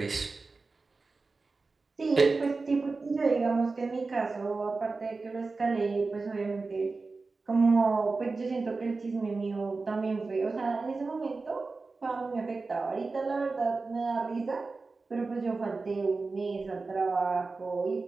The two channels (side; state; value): left; quieter; 3.9 dB